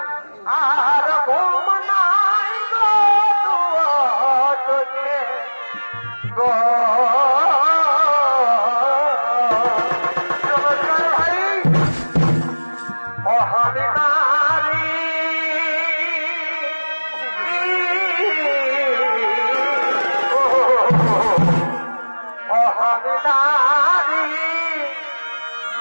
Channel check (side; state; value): both; inverted; correlation -1.00